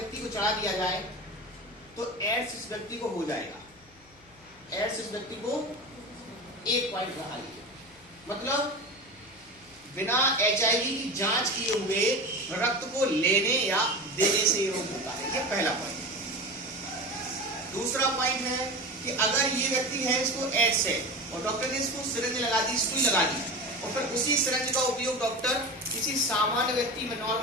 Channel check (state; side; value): noise; left; hum, 28 dB below the sound